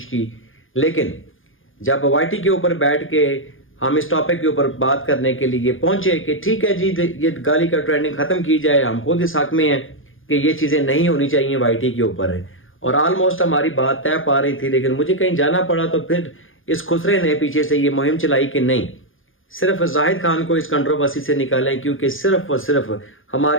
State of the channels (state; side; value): late; right; 0.58 ms